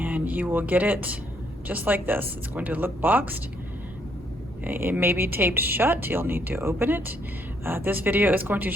you will get it just like this. It's going to look boxed. It may be taped shut. You'll need to open it. This video is going to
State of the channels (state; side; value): normal; both; correlation 0.70